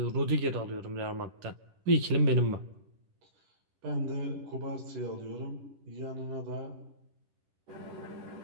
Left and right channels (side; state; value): left; late; 10 ms